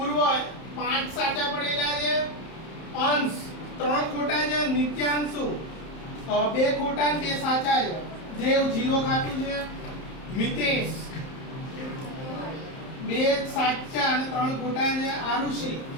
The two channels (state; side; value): late; right; 31 ms